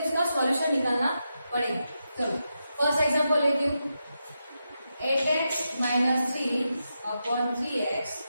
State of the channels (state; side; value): inverted; both; correlation -0.87